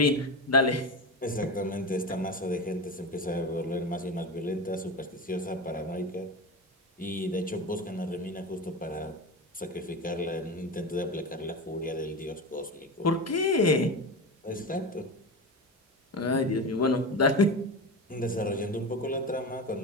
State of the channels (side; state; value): both; normal; correlation 0.23